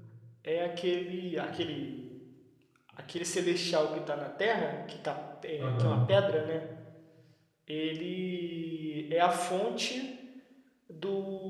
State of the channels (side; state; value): both; identical; correlation 1.00